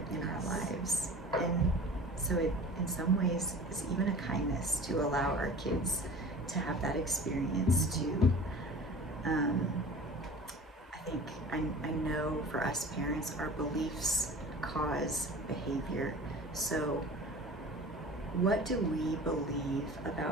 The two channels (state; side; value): normal; both; correlation 0.40